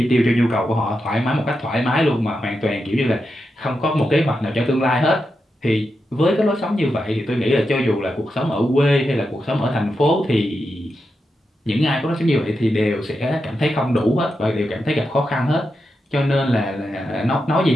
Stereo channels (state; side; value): normal; both; correlation 0.87